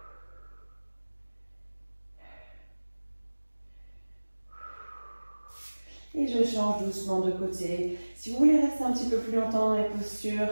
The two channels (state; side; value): inverted; both; correlation -1.00